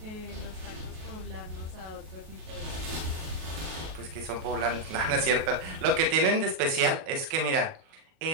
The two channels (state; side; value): late; left; 37 ms